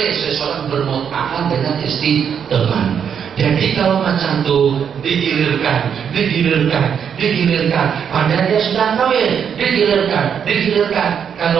seseorang bermut'ah dengan istri teman. Jadi kalau macam itu digilirkan, padahal dia sudah kawin, digilirkan.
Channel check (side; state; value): left; quieter; 7.7 dB